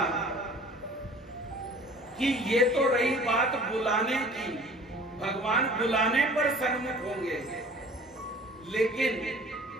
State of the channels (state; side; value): normal; both; correlation 0.48